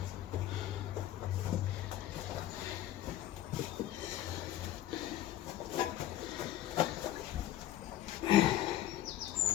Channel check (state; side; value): quieter; right; 13.0 dB